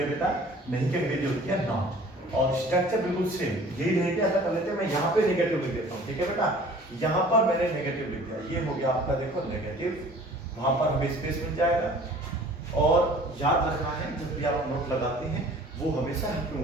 बेटा, नहीं की अंग्रेजी होती है नॉट, और स्ट्रक्चर बिल्कुल सेम यही रहेगा। ऐसा कर लेते हैं, मैं यहाँ पे नेगेटिव लिख देता हूँ। ठीक है बेटा, यहाँ पर मैंने नेगेटिव लिख दिया, ये हो गया आपका देखो नेगेटिव, वहां पर हमें स्पेस मिल जाएगा। और याद रखना है जब भी आप नोट लगाते हैं, वो हमेशा हेल्पिंग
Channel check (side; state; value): both; normal; correlation 0.49